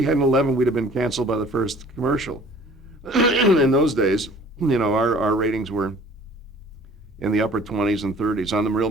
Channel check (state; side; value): normal; both; correlation 0.50